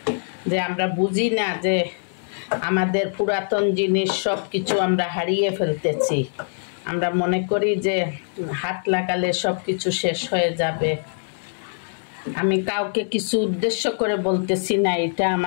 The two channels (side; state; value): right; silent; 63 dB below the other